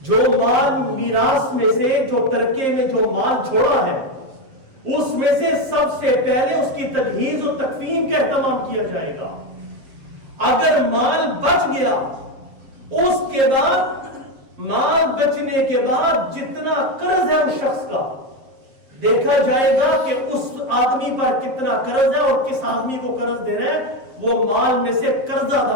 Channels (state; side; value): late; left; 7.5 ms